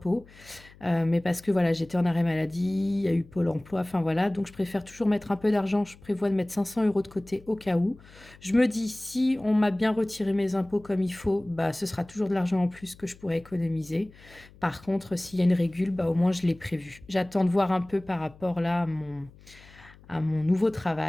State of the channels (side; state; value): left; noise; hum, 23 dB below the sound